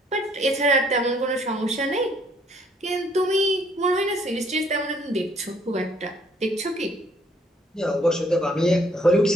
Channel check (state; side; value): normal; both; correlation 0.64